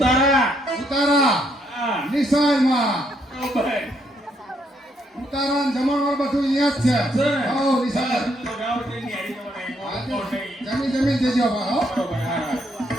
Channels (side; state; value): both; normal; correlation 0.73